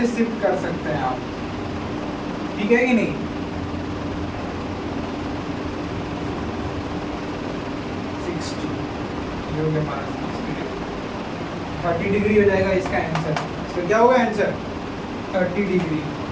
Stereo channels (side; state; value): both; identical; correlation 1.00